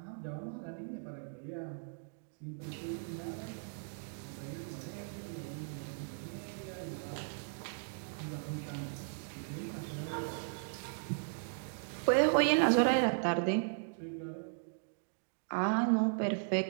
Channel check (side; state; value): left; silent; digital silence